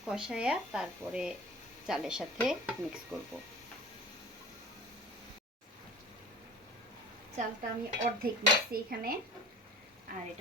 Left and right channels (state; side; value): normal; both; correlation 0.41